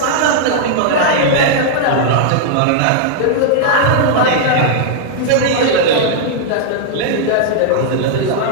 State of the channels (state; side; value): different; both; correlation -0.01